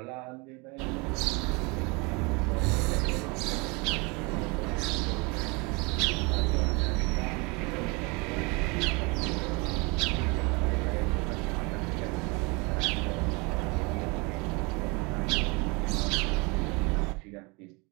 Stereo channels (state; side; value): quieter; left; 28.4 dB